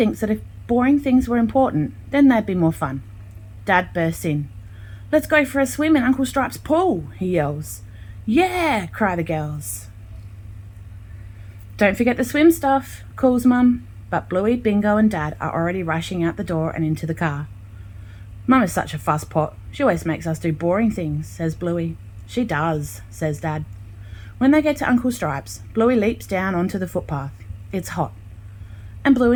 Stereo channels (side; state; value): both; identical; correlation 1.00